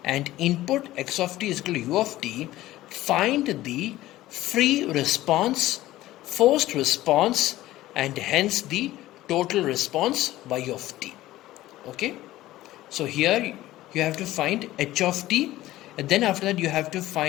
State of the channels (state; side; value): quieter; right; 15.9 dB